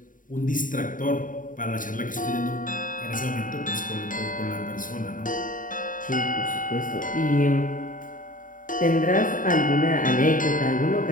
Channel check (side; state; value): right; late; 0.39 ms